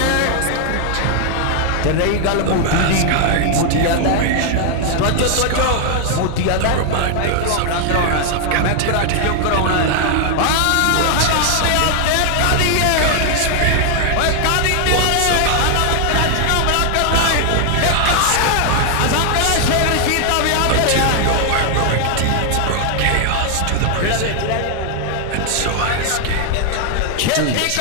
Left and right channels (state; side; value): different; both; correlation 0.00